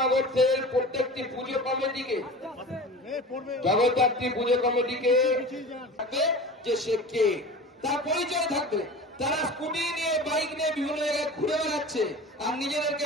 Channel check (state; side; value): normal; both; correlation 0.35